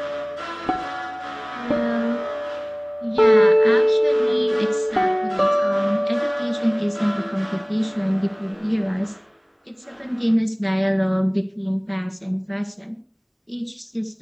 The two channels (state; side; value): identical; both; correlation 1.00